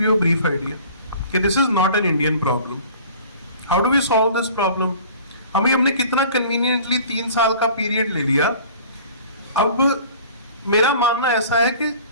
you a brief idea कि this is not an Indian problem. How do we solve this problem? हमने कितना कन्वीनियंटली 3 साल का पीरियड ले लिया। अब मेरा मानना ऐसा है कि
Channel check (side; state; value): both; inverted; correlation -0.46